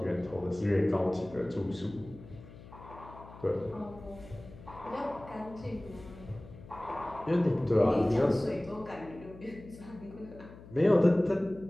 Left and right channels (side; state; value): left; noise; hum, 18 dB below the sound